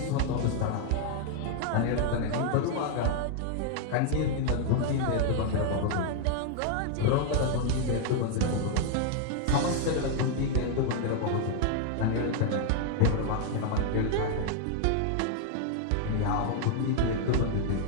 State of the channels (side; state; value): both; different; correlation 0.00